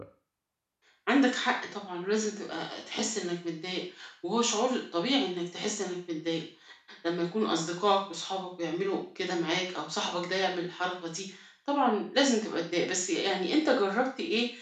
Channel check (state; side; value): identical; both; correlation 1.00